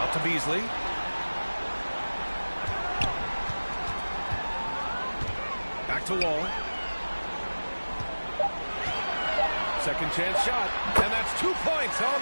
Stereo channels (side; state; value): both; inverted; correlation -1.00